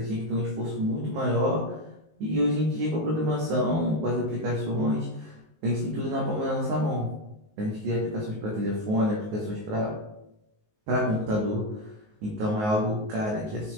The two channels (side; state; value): left; late; 19 ms